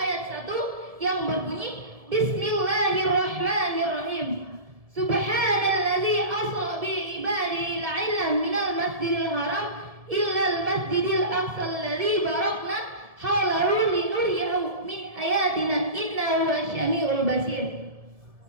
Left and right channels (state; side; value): late; left; 1.7 ms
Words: 1 yang berbunyi, Bismillahirrahmanirrahim. Subhanalladzi asra bi ibadihi la'ilan minal masjidil haram illal masjidil aqsa alladzi barakna haulahu linuriyahu min ayatina innahu wasyami'ul basir.